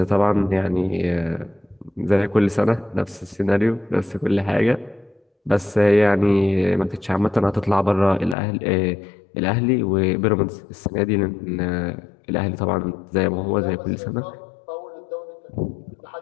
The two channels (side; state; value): right; drops out; at 8.3 s